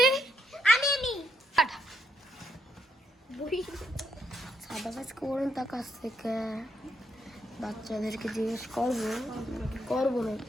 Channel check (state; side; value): normal; both; correlation 0.77